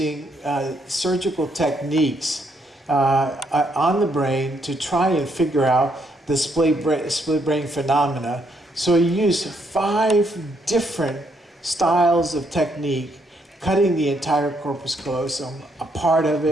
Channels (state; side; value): normal; both; correlation 0.74